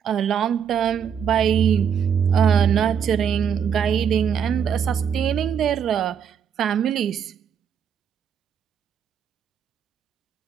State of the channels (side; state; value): left; quieter; 7.8 dB